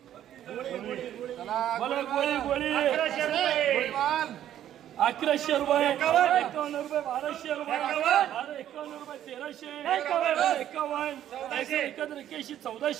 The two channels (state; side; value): quieter; left; 11.3 dB